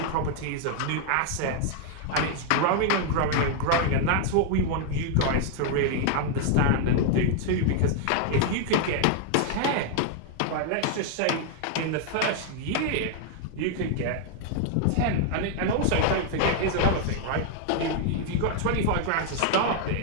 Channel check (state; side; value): different; both; correlation 0.00